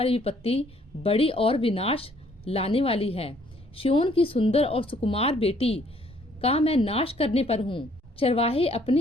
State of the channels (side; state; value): both; normal; correlation 0.63